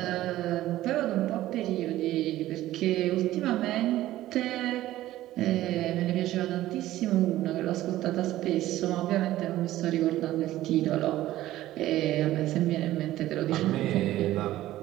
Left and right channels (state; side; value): quieter; left; 14.9 dB